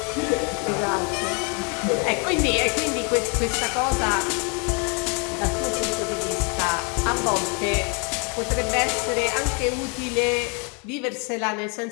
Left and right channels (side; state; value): right; quieter; 35.4 dB